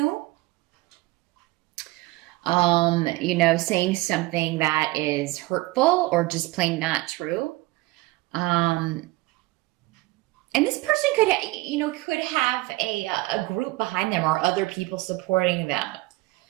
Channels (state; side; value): quieter; left; 20.7 dB